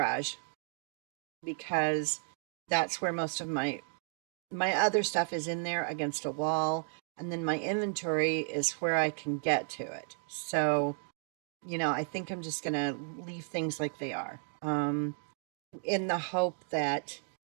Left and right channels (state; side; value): silent; left; 55 dB below the other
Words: because that's where most of my other stuff is, in there against a wall, and then my inventory is where I can get to it. So, I think I'm just going to leave things like they are, in the hope that